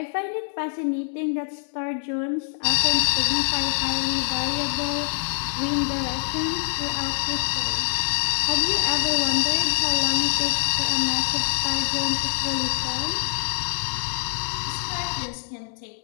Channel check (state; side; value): silent; right; digital silence